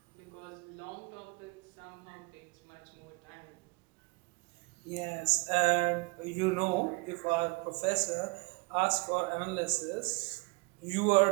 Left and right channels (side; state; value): left; quieter; 29.3 dB